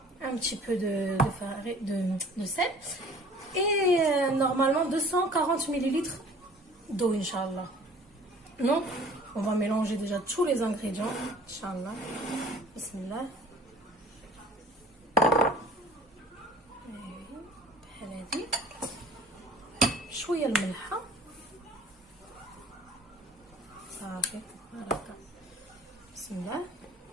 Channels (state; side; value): normal; both; correlation 0.50